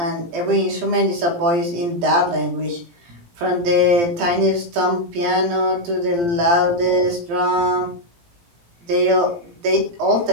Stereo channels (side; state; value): left; late; 17 ms